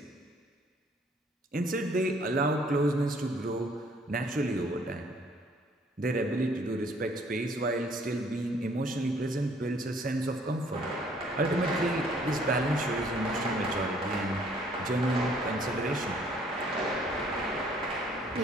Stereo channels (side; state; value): both; normal; correlation 0.61